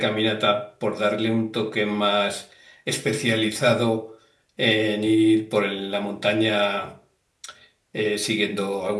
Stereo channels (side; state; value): both; identical; correlation 1.00